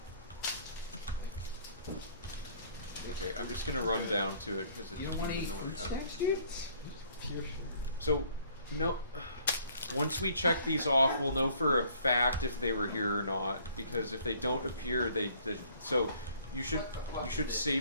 Okay, I'm just gonna run down to it because it's You don't want to weird eat no one fruit has. snacks, dude? Pure sugar. So, no. Once we check these off, we'll know for a fact if they were here or not. Because if they don't appear, so you should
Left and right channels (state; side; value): inverted; both; correlation -0.59